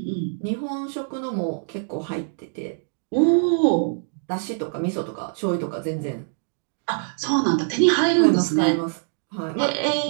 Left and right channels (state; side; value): silent; left; digital silence